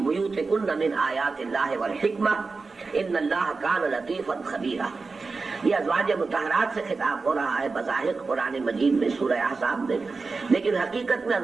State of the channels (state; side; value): quieter; left; 4.2 dB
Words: مِنْ آيَاتِ اللَّهِ وَالْحِكْمَةِ إِنَّ اللَّهَ كَانَ لَطِيفًا خَبِيرًا۔ یہ ازواج مطہرات سے خطاب ہو رہا ہے بظاہر قرآن مجید میں سورہ احزاب میں، لیکن حقیقت میں